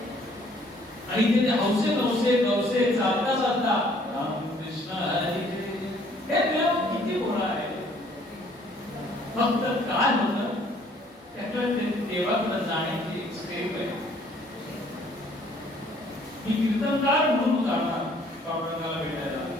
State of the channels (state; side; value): normal; both; correlation 0.60